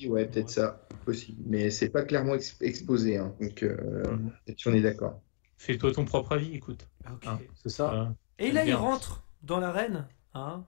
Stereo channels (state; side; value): silent; right; digital silence